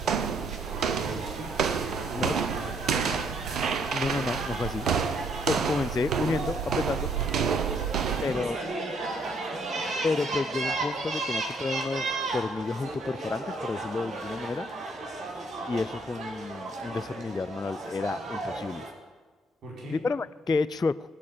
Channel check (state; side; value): normal; both; correlation 0.68